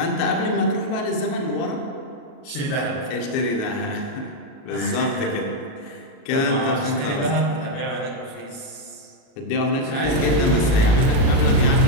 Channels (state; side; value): late; right; 37 ms